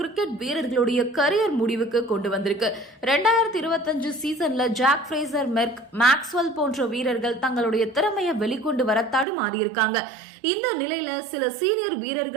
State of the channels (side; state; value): left; drops out; at 9.2 s